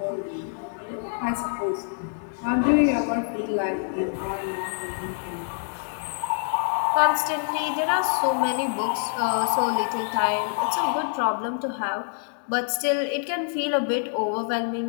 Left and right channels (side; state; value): right; silent; 61 dB below the other